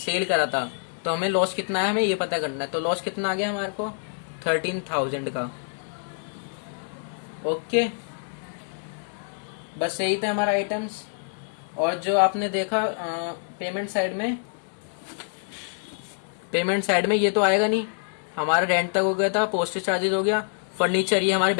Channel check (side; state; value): right; silent; digital silence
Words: करा था, तो हमें लॉस कितना है हमें ये पता करना है। तो लॉस कितना आ गया हमारे को 13,000 का, ओके। बस यही था हमारा आइटम्स। और जो आपने देखा पेमेंट साइड में ये तो आएगा नहीं, हमारा रेंट तक हो गया था, पोस्टेज चार्जेस हो गया, फर्नीचर ये हमारे